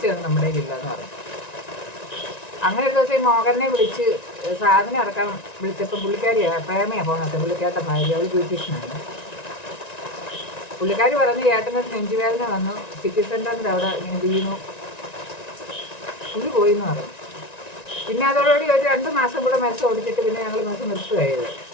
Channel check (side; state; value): right; late; 1.9 ms